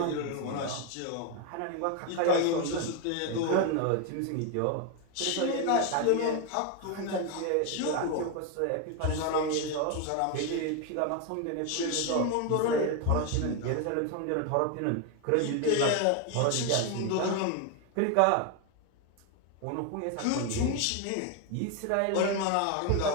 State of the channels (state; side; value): different; both; correlation 0.01